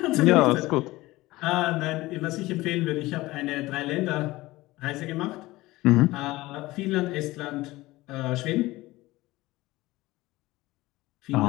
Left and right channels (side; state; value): right; quieter; 19.1 dB